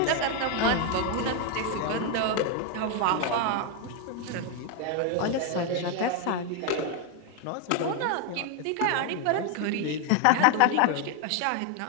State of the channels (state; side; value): different; both; correlation 0.01